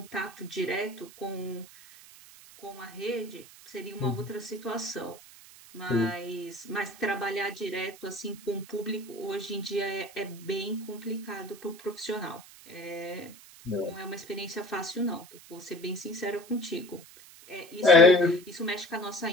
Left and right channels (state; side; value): noise; right; hiss, 20 dB below the sound